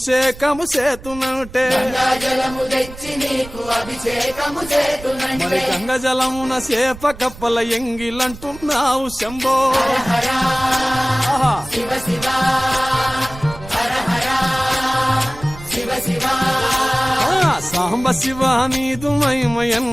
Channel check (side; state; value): right; noise; rumble, 16 dB below the sound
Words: చేతునంటే గంగా జలము తెచ్చి నీకు అభిషేకము చేతునంటే మరి గంగా జలమున సేప కప్పల ఎంగిలంటున్నావు శంభో హర శివ శివ హర హర శివ శివ సాంబ శివ నీదు మహిమ